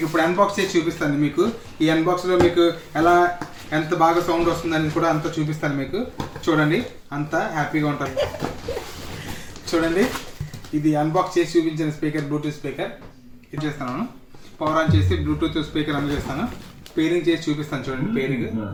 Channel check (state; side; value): identical; both; correlation 1.00